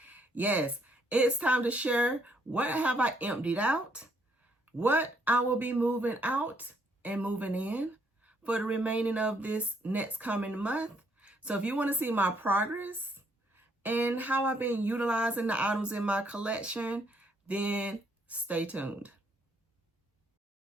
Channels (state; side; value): normal; both; correlation 0.70